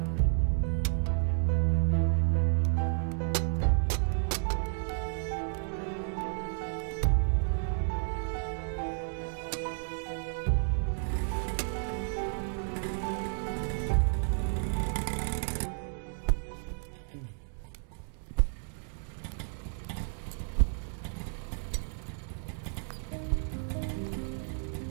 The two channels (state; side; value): silent; left; 57 dB below the other